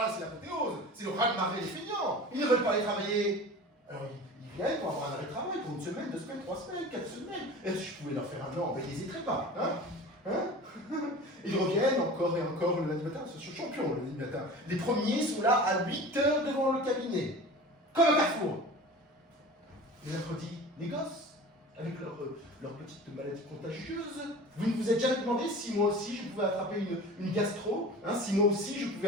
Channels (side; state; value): both; normal; correlation 0.37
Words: là, c'est l'apothéose, c'est le raz-de-marée des feignants. Ils ne veulent pas aller travailler. Alors, ils viennent pour avoir un arrêt de travail pour 1 semaine, 2 semaines, 3 semaines, 4 semaines. Et si je pouvais leur faire un an, ben, ils n'hésiteraient pas. Ils reviennent encore et encore le lundi matin. Ce sont champions le lundi matin. Les premiers sont là à 8 heures devant le cabinet. Comme un carrefour. Le mercredi, les gosses, avec leur petite maladie contagieuse. Vous ne vous êtes jamais demandé si moi aussi je pouvais attraper une gastro, si moi aussi je pouvais